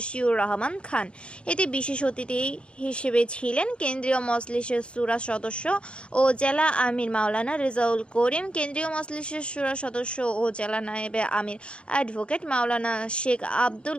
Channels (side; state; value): right; late; 0.057 ms